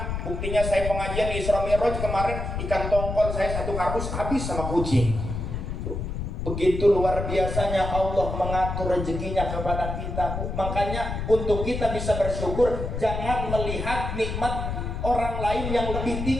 Buktinya saya pengajian di Isra Mi'raj kemarin, ikan tongkol saya satu kardus habis sama kucing. Begitu luar biasanya Allah mengatur rezekinya kepada kita Bu. Makanya untuk kita bisa bersyukur, jangan melihat nikmat orang lain yang lebih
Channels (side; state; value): left; noise; rumble, 4 dB below the sound